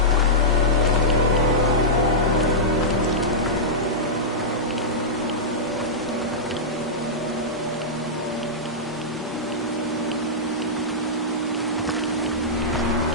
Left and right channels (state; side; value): normal; both; correlation -0.11